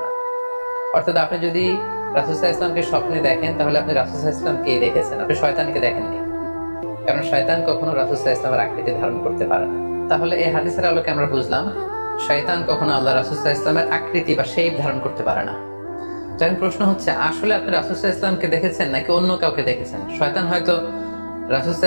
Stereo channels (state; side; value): inverted; both; correlation -1.00